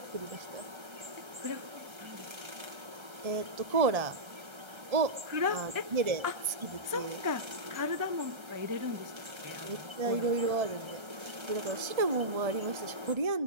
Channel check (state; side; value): late; left; 1.3 ms